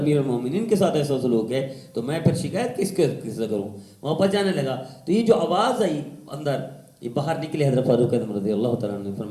المومنین کے ساتھ ایسا سلوک ہے تو میں پھر شکایت کس سے کروں؟ واپس جانے لگا تو یہ جو آواز آئی اندر، یہ باہر نکلے حضرت فاروق اعظم رضی اللہ تعالیٰ عنہ نے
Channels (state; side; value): identical; both; correlation 1.00